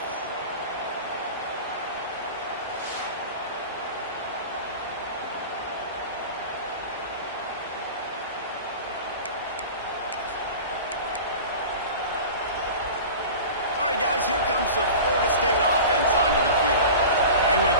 Guys, here comes the Florida State offense onto the field. They went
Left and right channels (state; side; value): inverted; both; correlation -0.35